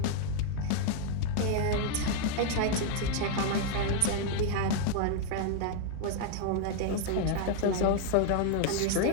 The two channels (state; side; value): different; both; correlation 0.00